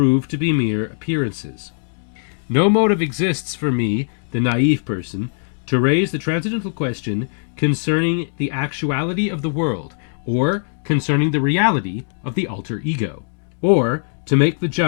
to be mere appearances. No motive exists for me, the naive person, to raise the transcendental question concerning the actuality of the world, or concerning the reality of the alter ego, or to make the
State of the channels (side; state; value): right; silent; digital silence